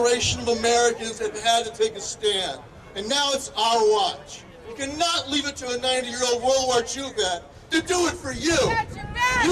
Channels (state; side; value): identical; both; correlation 1.00